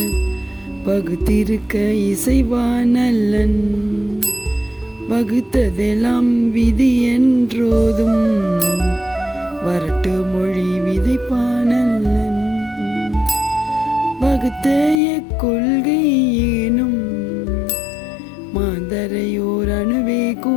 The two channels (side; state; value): right; drops out; at 15.0 s